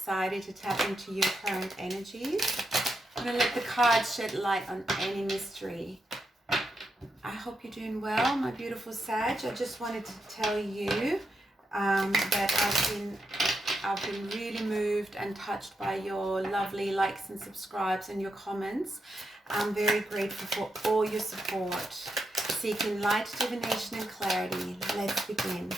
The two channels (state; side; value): normal; both; correlation 0.84